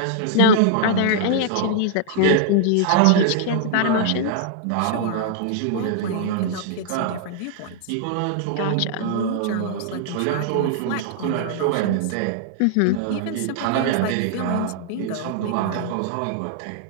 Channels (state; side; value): different; both; correlation -0.01